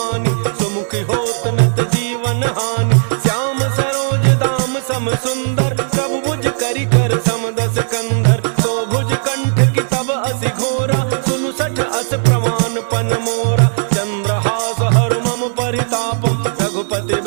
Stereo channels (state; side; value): silent; left; 69 dB below the other